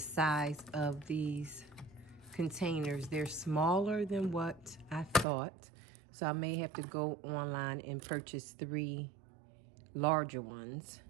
of these containers. They're smaller than what I thought. So I may have to go online and purchase 3 larger ones.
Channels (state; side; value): drops out; left; at 5.2 s